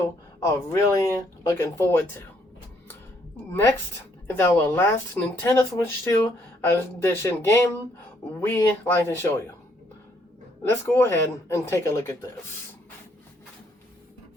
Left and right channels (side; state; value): both; normal; correlation 0.69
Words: are really looking forward to. Next is our last Nintendo Switch 2 Edition game we like to show you. Let's go ahead and take a look at this.